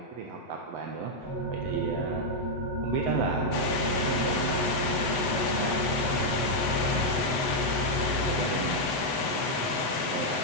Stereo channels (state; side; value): late; right; 8.0 ms